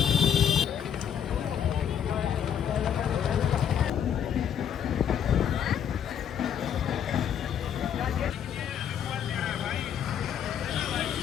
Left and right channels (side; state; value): right; quieter; 8.7 dB